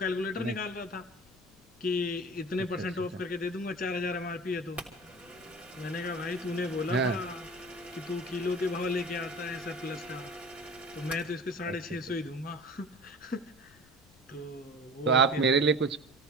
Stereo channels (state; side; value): noise; left; rumble, 28 dB below the sound